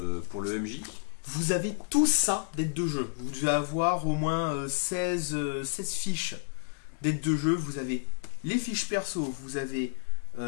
MJ. Vous avez tout ça d'aides de jeu. Vous devez avoir au moins 16 fiches d'aides de jeu. Vous avez les fiches perso, vous avez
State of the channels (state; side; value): silent; right; digital silence